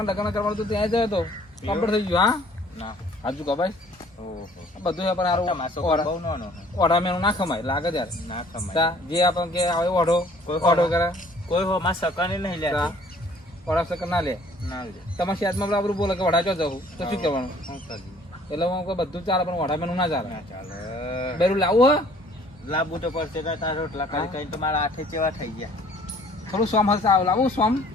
લગ્ન કરવાનું તો ત્યાં જયો તો કમ્પ્લીટ થઈ ગયું હા ના હાજુ કભાઈ બધું પણ સારું ઓઢા મેનું ના ખમાય લાગે ત્યારે ના ખમાય જે આપણે કે આવે ઓઢો ઓઢો કરે કોઈ હો માં સકને નહીં લે ઓઢા સકન ના લે તમારા શેતમાં બરાબર બોલે કે ઓઢા જો જવું તો શું કરવાનું એટલે હું બધું ચાલે પણ ઓઢા મેનું ના ચાલે બેરું લાવવું હે લાવવું તો પડશે તારા રોટલા કરી કઈ તો મારા હાથે ચેવા થઈ ગયા થોડું સોમ હશે લાવું સોમ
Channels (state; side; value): normal; both; correlation 0.56